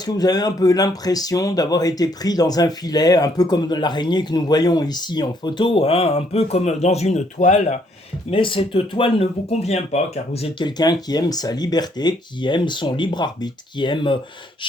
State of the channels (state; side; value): normal; both; correlation 0.68